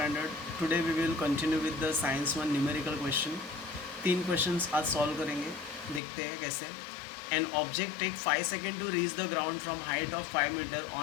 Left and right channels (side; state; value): right; drops out; at 6.0 s